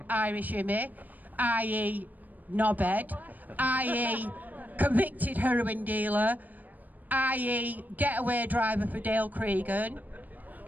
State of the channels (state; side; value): late; left; 0.083 ms